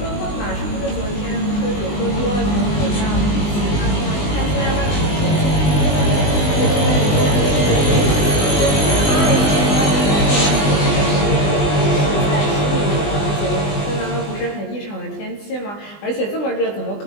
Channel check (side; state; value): right; late; 20 ms